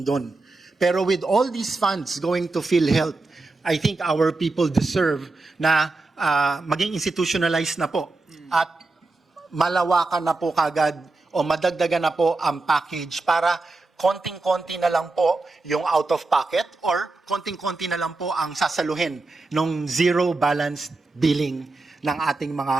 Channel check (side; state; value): left; quieter; 3.4 dB